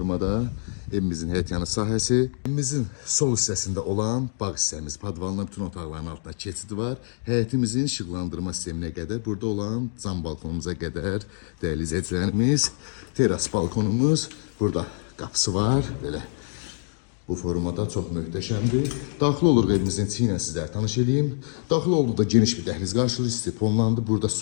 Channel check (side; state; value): right; silent; 61 dB below the other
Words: evimizin həyətyanı sahəsi. Evimizin sol hissəsində olan bağ hissəmiz, padvalına bütün otaqların altında keçid var. Həyətimizin işıqlandırma sisteminə qədər, burada olan cam balkonumuza qədər dəyərli izləyicilərimiz, teras balkonumuz, burada qapısı var, belə bu formada çox möhtəşəmdir. Daxil oluruq evimizin içi ilə sizlərə tanış edeyim. Daxil olduqda geniş bir dəhliz qarşılayır, istifonlandı. Burada